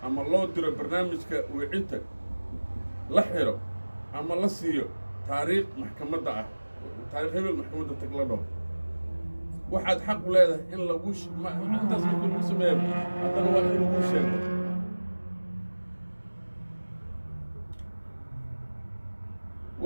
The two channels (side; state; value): both; inverted; correlation -1.00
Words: ama loo diro barnaamijka wicinta la xiro ama la siiyo taariikh maxkamadda ah taariikh hebel maxkamadda tag la dhaho waxaad xaq u leedahay in lagu intaas markii lagu sameeyo haddana waa in lagu sheego